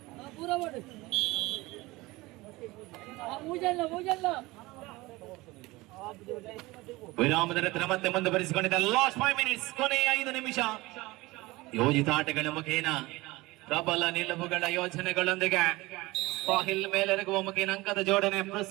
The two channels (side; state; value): left; quieter; 21.0 dB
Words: ವಿರಾಮದ ನಂತರ ಮತ್ತೆ ಮುಂದುವರಿಸಿಕೊಂಡಿದೆ. ಲಾಸ್ಟ್ 5 ಮಿನಿಟ್ಸ್, ಕೊನೆಯ 5 ನಿಮಿಷ. ಯೋಜಿತ ಆಟಗಳ ಮುಖೇನ ಪ್ರಬಲ ನಿಲುವುಗಳ ಯೋಜನೆಗಳೊಂದಿಗೆ ಸಾಹಿಲ್ ಮೇಲೆರಗುವ ಮುಖೇನ ಅಂಕದ ಜೋಡಣೆ